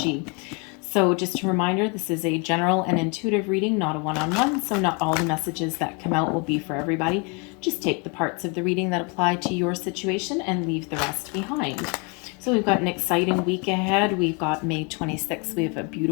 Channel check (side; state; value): right; quieter; 32.8 dB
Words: So just a reminder, this is a general and intuitive reading, not a one-on-one, so not all the messages that come out will be for everybody. Just take the parts of the reading that apply to your situation and leave the rest behind. So we've got an exciting week ahead. We've got May 26th. We have a